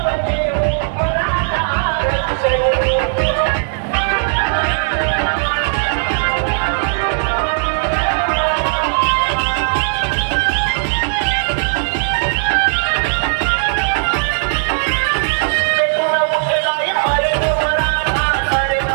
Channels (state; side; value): silent; left; digital silence